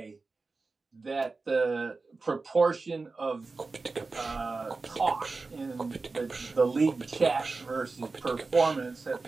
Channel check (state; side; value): quieter; left; 3.9 dB